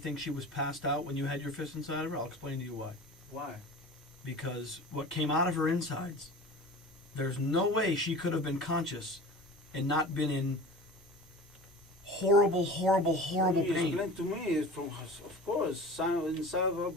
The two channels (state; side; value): normal; both; correlation 0.37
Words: she was passed out when you had your fist inside of her? I'll explain to you why. Why? Because what came out of her insides, there's no way she could have been conscious and not been in horrible, horrible, horrible You pain. explain to me, it's from, of course, inside of her